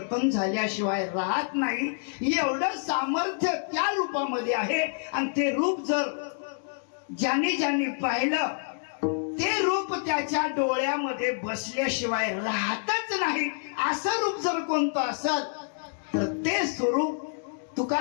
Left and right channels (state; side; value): silent; right; digital silence